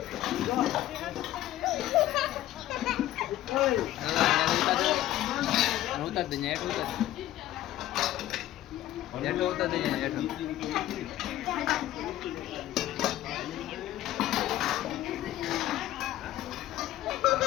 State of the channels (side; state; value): right; quieter; 14.1 dB